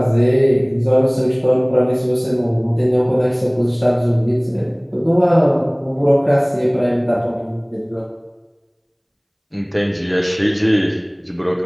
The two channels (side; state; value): both; identical; correlation 1.00